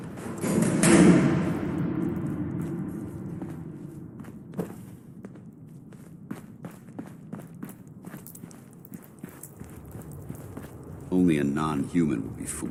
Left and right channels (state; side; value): identical; both; correlation 1.00